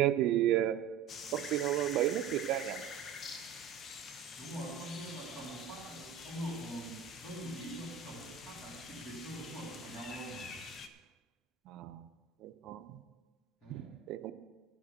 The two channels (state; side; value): quieter; left; 8.0 dB